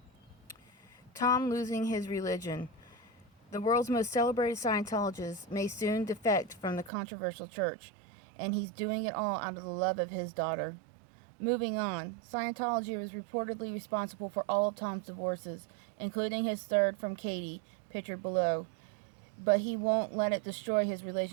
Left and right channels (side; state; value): left; drops out; at 6.9 s